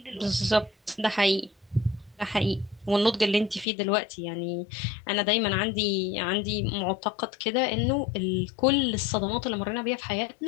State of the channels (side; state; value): right; drops out; at 3.7 s